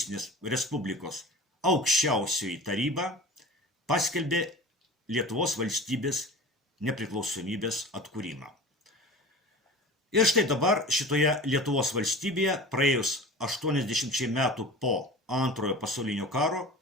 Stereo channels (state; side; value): normal; both; correlation 0.36